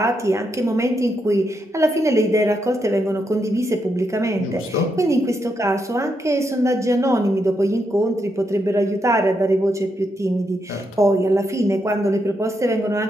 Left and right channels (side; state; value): both; normal; correlation 0.81